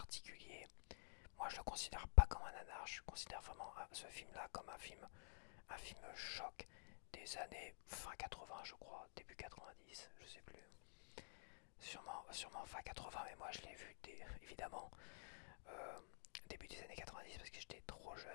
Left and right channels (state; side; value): silent; right; digital silence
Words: Moi, je le considère pas comme un nanar. Je considère vraiment ce film-là comme un film choc des années fin 80, je crois, début 90, je sais plus. Sûrement fin 80, mais moi je l'ai vu évidemment début des années 90 parce que j'étais trop